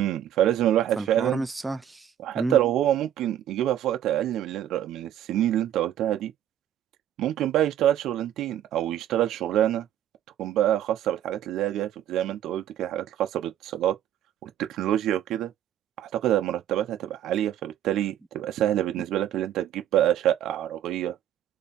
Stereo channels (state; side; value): quieter; left; 11.0 dB